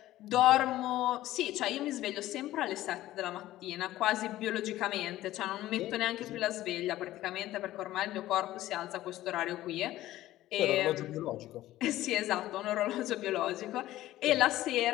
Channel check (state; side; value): quieter; right; 15.1 dB